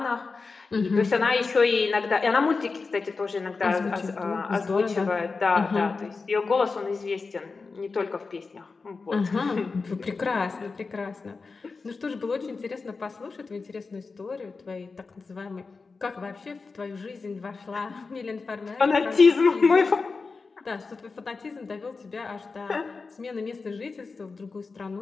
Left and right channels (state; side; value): quieter; right; 4.3 dB